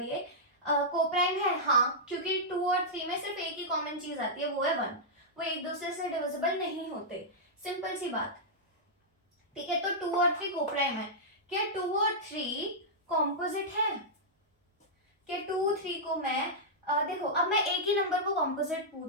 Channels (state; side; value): normal; both; correlation -0.10